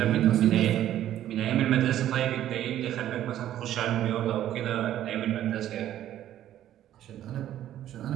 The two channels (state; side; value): quieter; left; 12.1 dB